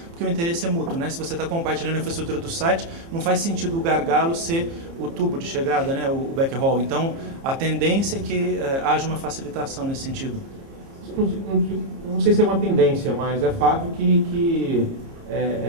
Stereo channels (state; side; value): late; left; 30 ms